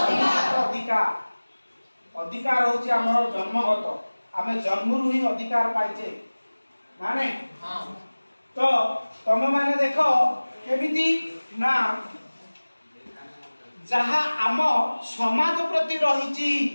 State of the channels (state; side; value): inverted; both; correlation -1.00